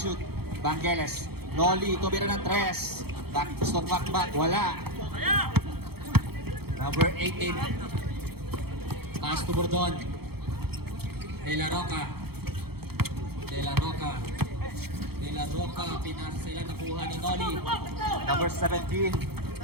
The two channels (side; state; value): left; late; 0.96 ms